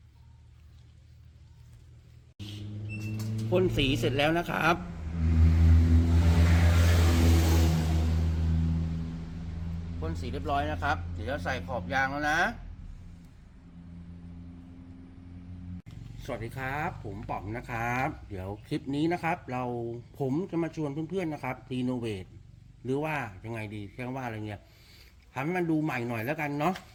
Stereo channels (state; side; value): identical; both; correlation 1.00